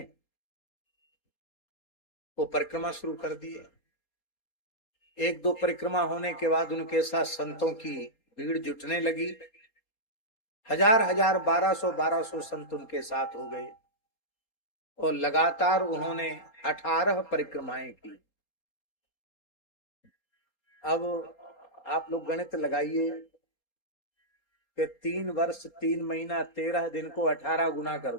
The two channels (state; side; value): late; right; 4.2 ms